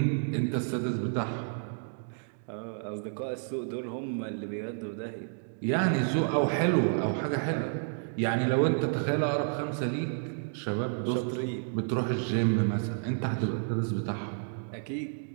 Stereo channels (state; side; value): silent; left; digital silence